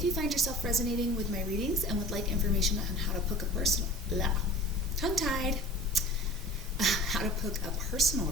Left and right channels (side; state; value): both; normal; correlation 0.41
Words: you find yourself resonating with my readings and would like information on how to book a personal, tongue-tied, how to book a personal